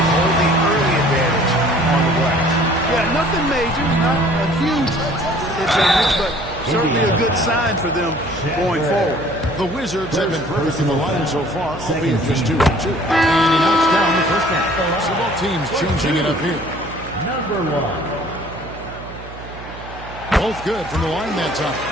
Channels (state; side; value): noise; right; hum, 15 dB below the sound